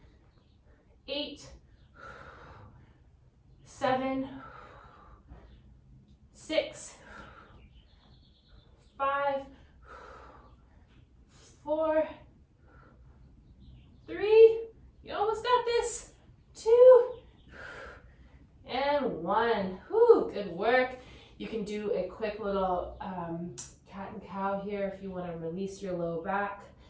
8, 7, 6, 5, 4, 3, you almost got this, 2, and 1. Whew, good work. You can do a quick little cat and cow here if you want to release your low back.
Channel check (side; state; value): both; identical; correlation 1.00